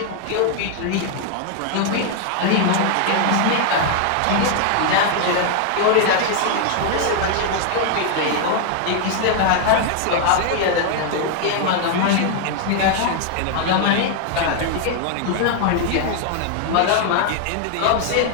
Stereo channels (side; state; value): both; different; correlation 0.00